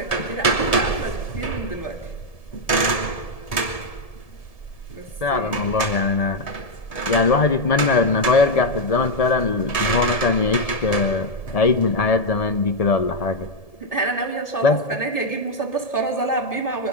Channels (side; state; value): right; late; 1.7 ms